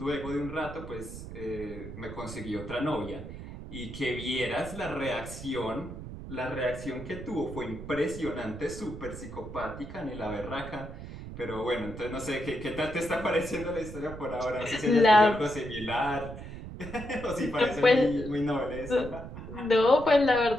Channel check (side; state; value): right; noise; rumble, 11 dB below the sound